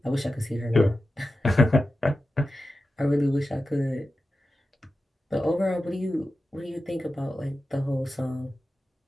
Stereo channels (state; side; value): normal; both; correlation 0.93